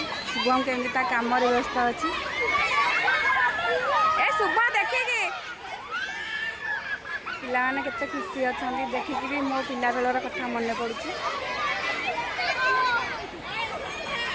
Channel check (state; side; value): identical; both; correlation 1.00